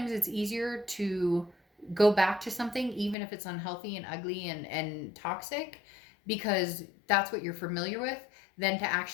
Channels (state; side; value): drops out; right; at 3.2 s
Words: it's easier to go back to something, even if it's unhealthy and ugly and toxic, because that's what you're familiar with, than to